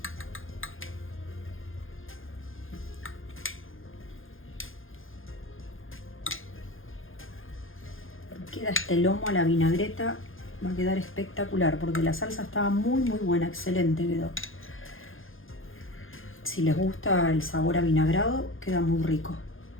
Queda este lomo a la vinagreta, va a quedar espectacular porque la salsa estaba muy buena, excelente quedó. Si les gusta el sabor avinagrado, queda muy rico.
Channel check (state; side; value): late; right; 0.59 ms